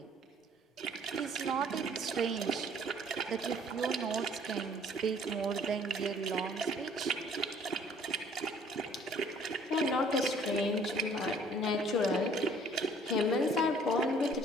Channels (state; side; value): normal; both; correlation 0.57